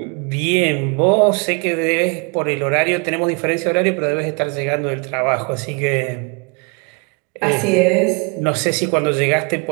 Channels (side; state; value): left; quieter; 32.7 dB